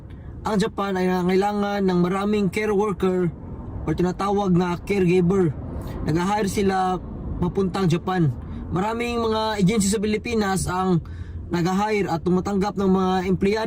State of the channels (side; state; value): both; identical; correlation 1.00